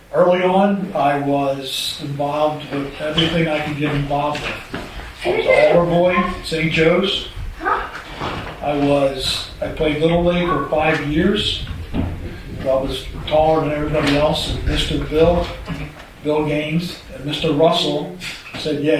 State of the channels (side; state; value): both; identical; correlation 1.00